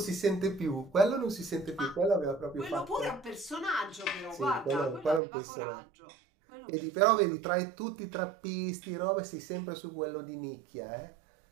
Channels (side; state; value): left; drops out; at 5.2 s